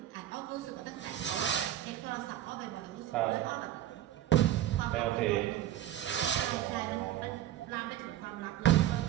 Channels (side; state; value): left; quieter; 12.5 dB